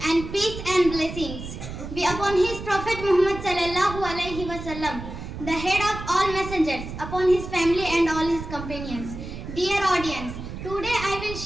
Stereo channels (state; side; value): noise; right; rumble, 9 dB below the sound